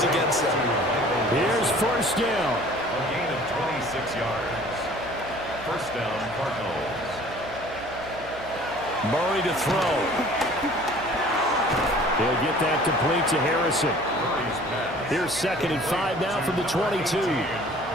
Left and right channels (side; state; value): right; noise; hum, 17 dB below the sound